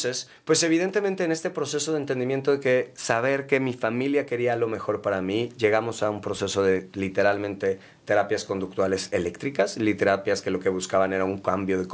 pues evidentemente en este proceso de entendimiento de que saber que mi familia quería lo mejor para mí, llegamos a un proceso de literalmente terapias conductuales eléctricas, terapias que lo que buscaban era un cambio de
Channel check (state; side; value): identical; both; correlation 1.00